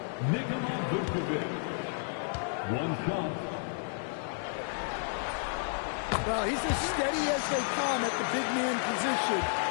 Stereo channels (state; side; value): silent; right; digital silence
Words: Nikola Vucevic. 1 shot. Well, he's as steady as they come at the big man position.